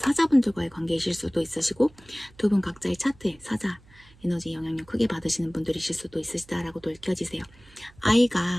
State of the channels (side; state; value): right; noise; hum, 26 dB below the sound